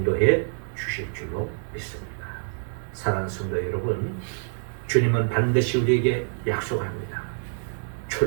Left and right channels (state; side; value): silent; left; digital silence